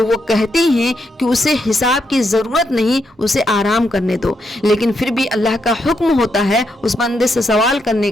وہ کہتی ہیں کہ اسے حساب کی ضرورت نہیں، اسے آرام کرنے دو، لیکن پھر بھی اللہ کا حکم ہوتا ہے اس بندے سے سوال کرنے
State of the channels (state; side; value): normal; both; correlation 0.80